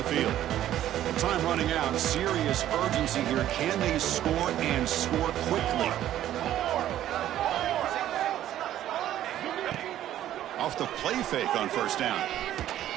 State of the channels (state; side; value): quieter; left; 12.3 dB